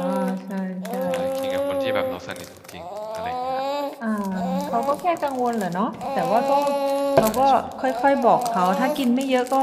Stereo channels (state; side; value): identical; both; correlation 1.00